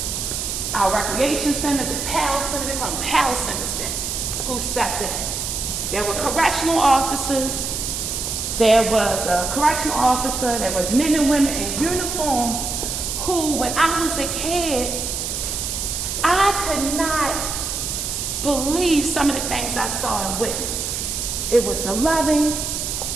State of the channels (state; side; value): noise; right; hiss, 3 dB below the sound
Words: our recreation centers, and PAL centers, they call them PAL centers then, who stepped in. There were correctional officers. There was a correctional officer, there was men and women in uniforms who, when I was a kid, I could not believe some of the things I saw and witnessed. It was the loving,